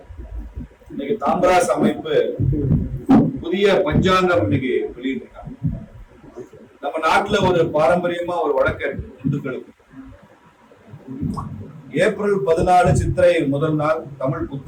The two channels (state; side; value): identical; both; correlation 1.00